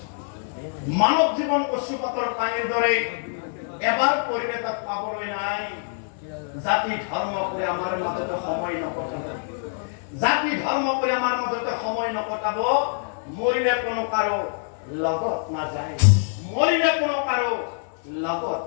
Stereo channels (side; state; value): right; silent; 62 dB below the other